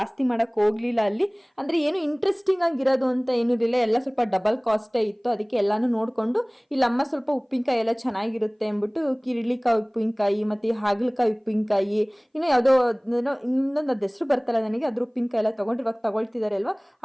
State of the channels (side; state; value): both; identical; correlation 1.00